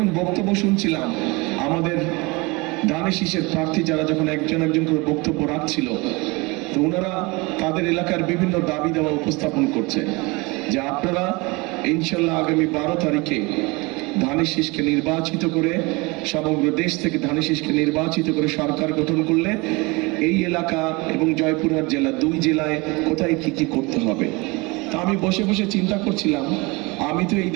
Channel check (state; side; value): quieter; left; 25.6 dB